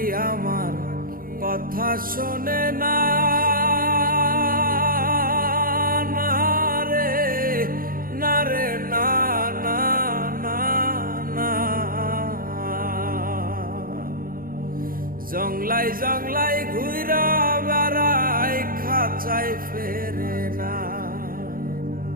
আমার কথা শোনে না, না রে না রে না না না না। জংলাই জংলাই ঘুইরা বেড়াই, খাঁচায় ফেরে না।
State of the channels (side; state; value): left; late; 0.42 ms